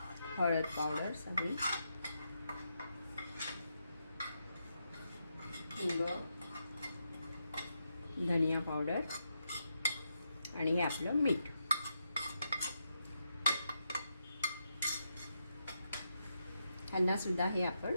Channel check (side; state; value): both; inverted; correlation -0.83